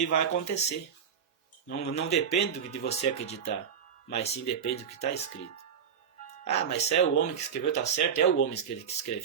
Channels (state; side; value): quieter; left; 7.5 dB